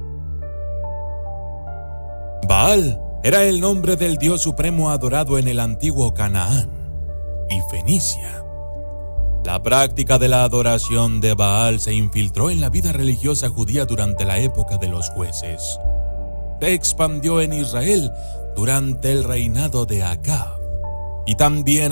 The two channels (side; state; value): both; inverted; correlation -1.00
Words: Baal era el nombre del dios supremo adorado en el antiguo Canaán y Fenicia. La práctica de la adoración de Baal se infiltró en la vida religiosa judía durante la época de los jueces. Se expandió en Israel durante el reinado de Acab y también